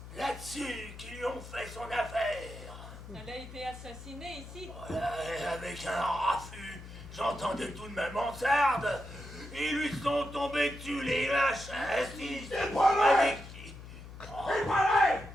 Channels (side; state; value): left; noise; hum, 14 dB below the sound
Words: là-dessus, qu'ils lui ont fait son affaire. elle a été assassinée ici. Voilà, et avec un raffut, j'entendais tout de ma mansarde. Ils lui sont tombés dessus, les lâches, assis. C'est pas vrai! Avec qui? C'est pas vrai!